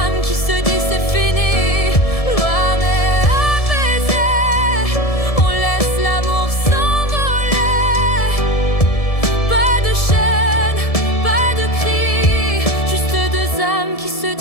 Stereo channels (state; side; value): late; right; 1.7 ms